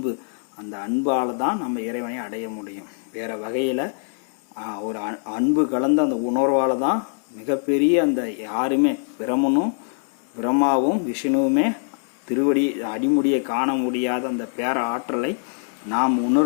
அந்த அன்பால் தான் நம்ம இறைவனை அடைய முடியும். வேறு வகையில் ஒரு அன்பு கலந்த அந்த உணர்வால் தான் மிகப்பெரிய அந்த யாருமே பிரம்மாவும் விஷ்ணுவுமே திருவடி அடிமுடியை காண முடியாத அந்த பேர ஆற்றலை நாம்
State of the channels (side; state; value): right; silent; 63 dB below the other